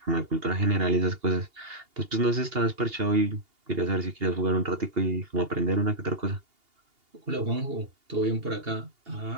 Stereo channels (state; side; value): late; left; 2.8 ms